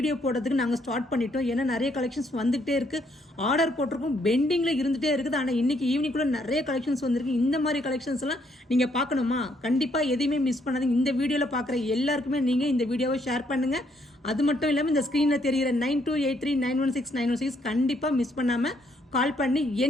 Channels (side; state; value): both; normal; correlation 0.71